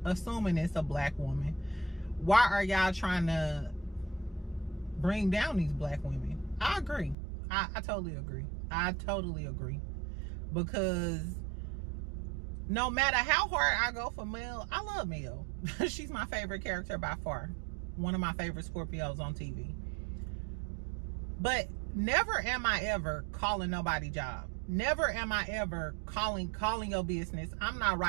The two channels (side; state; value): left; drops out; at 7.2 s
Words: assuming it's a black woman, why are y'all trying to bring down these black women? I agree. I totally agree. I totally agree. Because no matter how hard I go for Mel, I love Mel. She's my favorite character by far. One of my favorite Scorpios on TV. But never am I ever calling nobody job. Never am I ever calling your business. I'm not